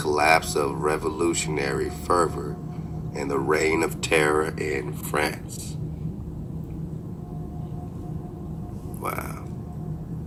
of revolutionary fervor and the reign of terror in France. Wow.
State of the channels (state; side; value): identical; both; correlation 1.00